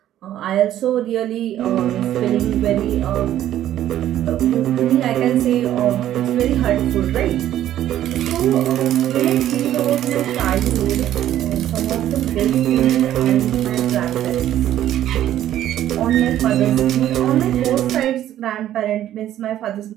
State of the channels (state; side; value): quieter; left; 12.2 dB